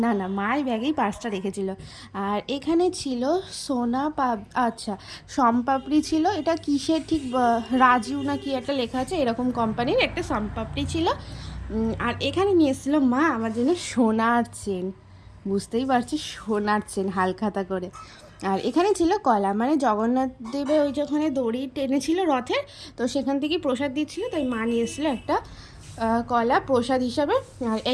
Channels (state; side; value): identical; both; correlation 1.00